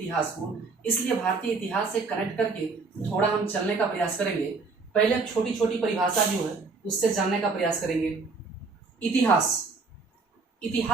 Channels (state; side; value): quieter; left; 4.2 dB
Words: को। इसलिए भारतीय इतिहास से कनेक्ट करके थोड़ा हम चलने का प्रयास करेंगे। पहले हम छोटी छोटी परिभाषा जो है उससे जानने का प्रयास करेंगे।